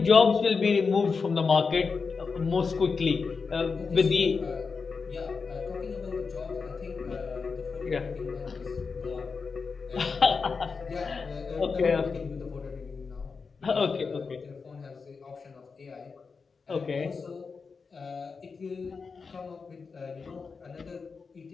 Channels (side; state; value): right; quieter; 5.0 dB